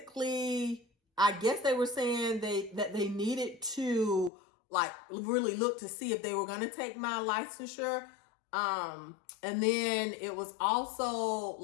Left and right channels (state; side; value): drops out; right; at 4.3 s